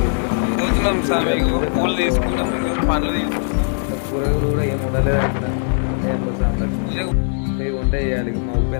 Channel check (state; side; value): silent; right; digital silence